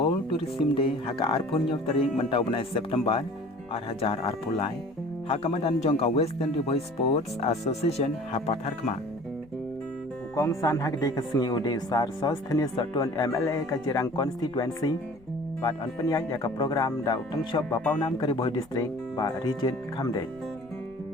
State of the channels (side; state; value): left; noise; rumble, 27 dB below the sound